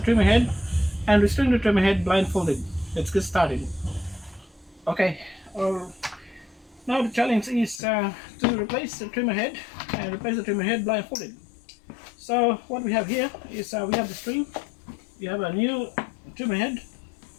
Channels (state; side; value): drops out; right; at 7.8 s